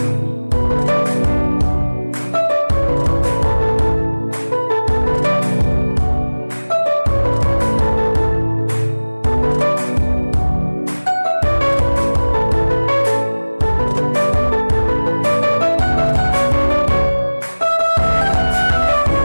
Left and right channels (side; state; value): both; inverted; correlation -1.00